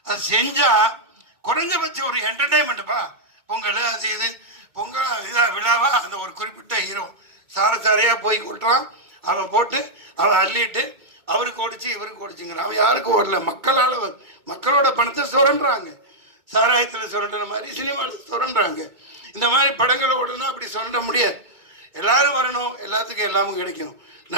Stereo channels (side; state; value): left; late; 2.3 ms